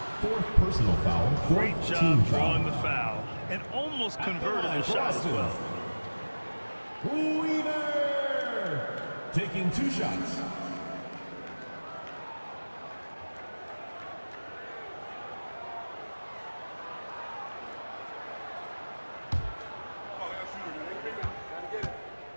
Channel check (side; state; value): both; inverted; correlation -1.00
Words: 4th personal foul. Great job drawing the foul and almost converted the shot as well. Weaver taking 2 shots.